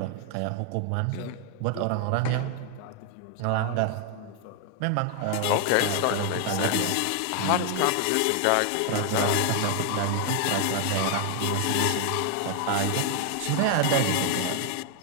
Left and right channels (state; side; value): different; both; correlation 0.00